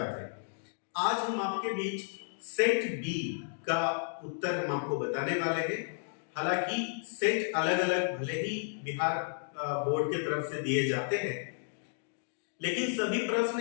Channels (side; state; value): right; silent; digital silence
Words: थे। आज हम आपके बीच सेट बी का उत्तर हम आपको बताने वाले हैं। हालांकि सेट अलग अलग भले ही बिहार बोर्ड की तरफ से दिए जाते हैं, लेकिन सभी प्रश्न